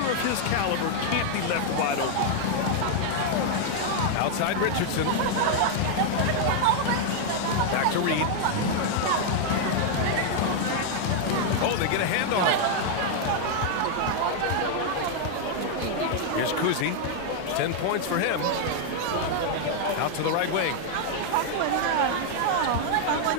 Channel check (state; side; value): different; both; correlation 0.00